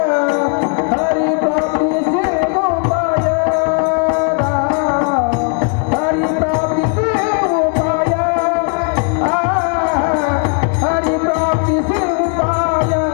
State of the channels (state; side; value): quieter; right; 37.5 dB